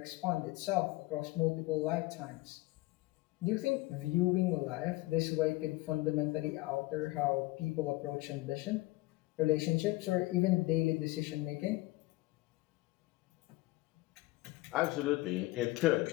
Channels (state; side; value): quieter; right; 19.8 dB